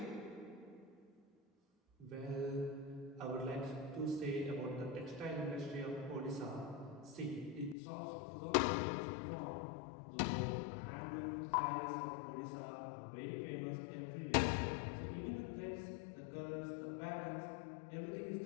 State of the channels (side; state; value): right; drops out; at 7.8 s